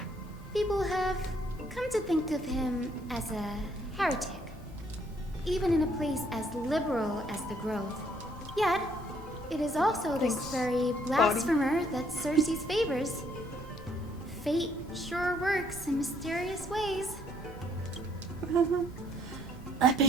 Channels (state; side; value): normal; both; correlation 0.67